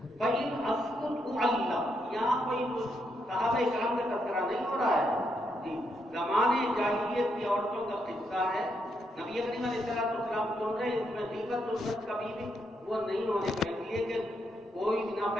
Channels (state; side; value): normal; both; correlation 0.79